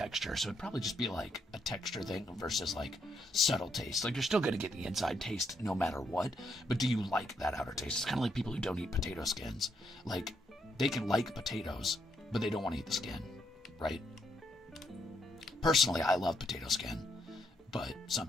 so it'd probably just be like a texture thing versus like subtle taste. Like, you're still going to get the inside taste no matter what, but do you like that outer taste? It's kind of like people who don't eat potato skins. Like, they can like potatoes, but they don't want to eat the skin, right? Personally, I love potato skin, but some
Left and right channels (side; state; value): both; normal; correlation 0.76